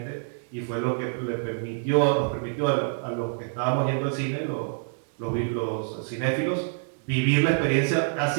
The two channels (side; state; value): left; silent; digital silence